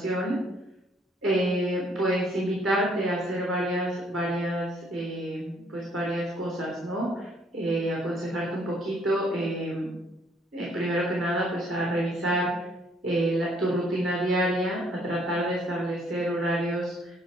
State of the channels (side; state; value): both; normal; correlation 0.65